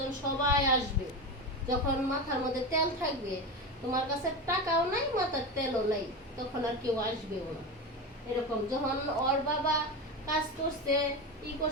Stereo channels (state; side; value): normal; both; correlation 0.21